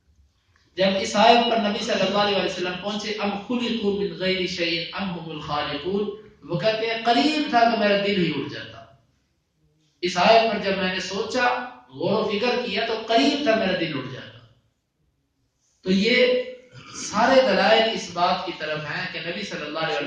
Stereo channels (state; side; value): identical; both; correlation 1.00